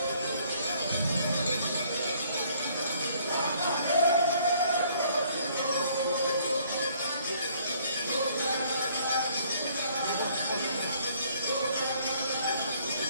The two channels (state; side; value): inverted; both; correlation -0.62